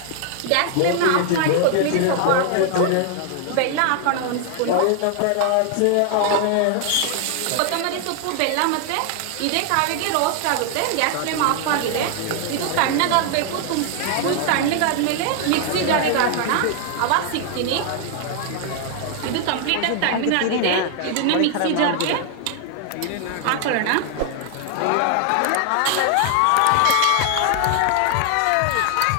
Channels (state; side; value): different; both; correlation 0.00